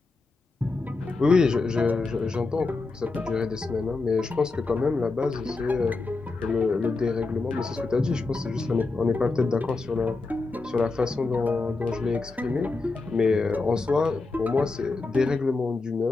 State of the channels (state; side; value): quieter; right; 3.8 dB